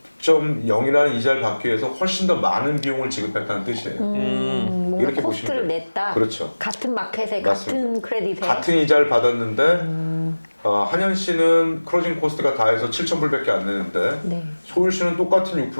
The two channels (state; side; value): inverted; both; correlation -1.00